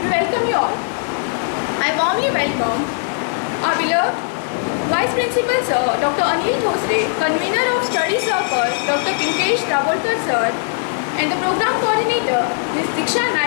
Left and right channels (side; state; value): right; silent; digital silence